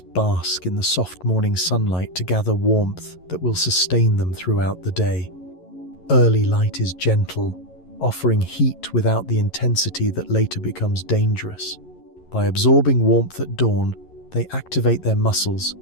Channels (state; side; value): late; right; 11 ms